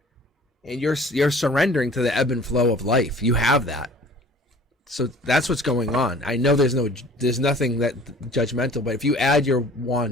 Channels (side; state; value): both; normal; correlation 0.48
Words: And you're surrendering to the ebb and flow of life. You have that. So that's what's going on. I know there's nothing that judgmental, but if you add your